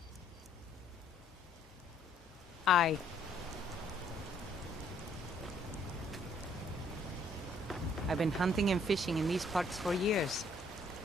Aye. I've been hunting and fishing in these parts for years.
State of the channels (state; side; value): normal; both; correlation 0.65